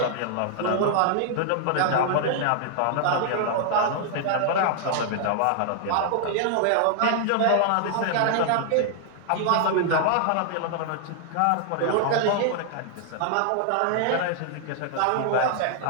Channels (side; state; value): both; different; correlation -0.01